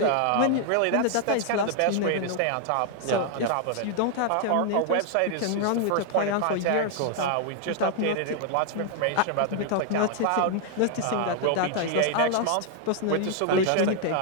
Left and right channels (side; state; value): both; different; correlation 0.00